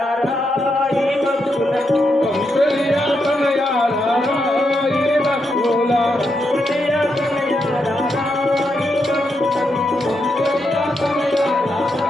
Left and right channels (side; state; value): both; normal; correlation 0.82